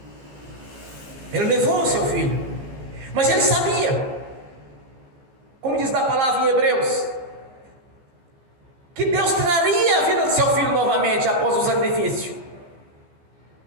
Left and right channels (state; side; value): late; left; 14 ms